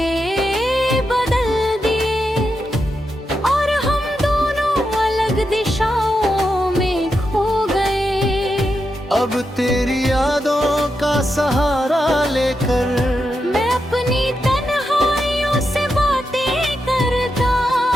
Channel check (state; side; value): normal; both; correlation 0.86